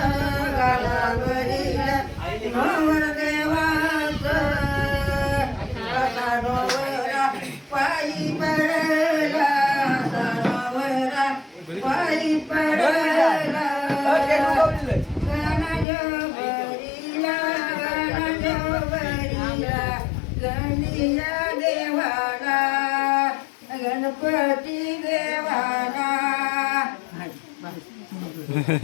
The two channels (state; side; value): drops out; right; at 15.9 s